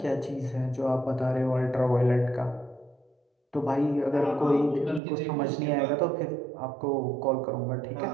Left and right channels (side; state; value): left; drops out; at 5.0 s